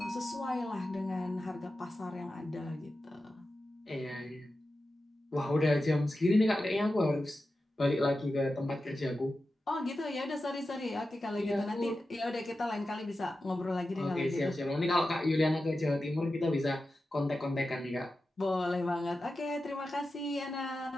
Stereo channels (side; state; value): both; normal; correlation 0.92